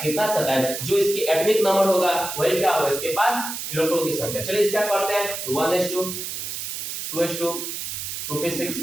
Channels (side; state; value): right; noise; hiss, 5 dB below the sound